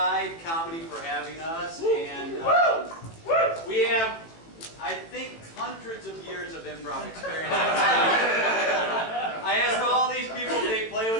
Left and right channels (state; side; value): late; right; 18 ms